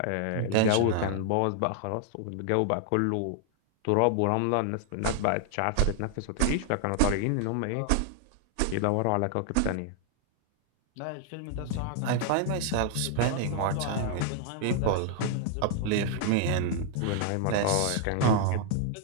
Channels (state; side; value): different; both; correlation 0.00